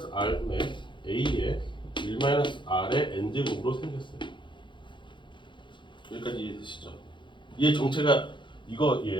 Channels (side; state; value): right; late; 0.23 ms